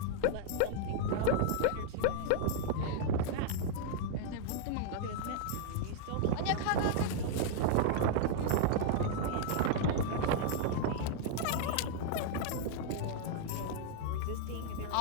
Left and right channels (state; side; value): different; both; correlation -0.01